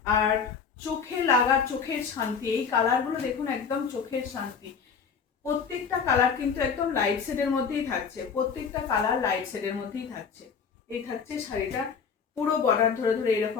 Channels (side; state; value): right; quieter; 6.1 dB